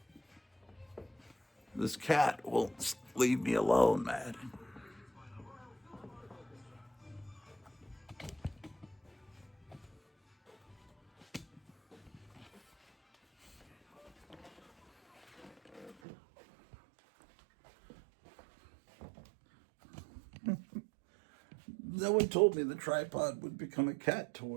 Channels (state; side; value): drops out; left; at 16.0 s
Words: This cat won't leave me alone, man. No one told me the tripod would become a cat